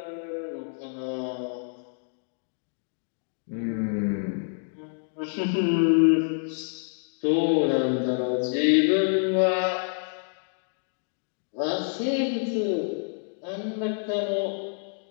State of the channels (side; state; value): right; silent; digital silence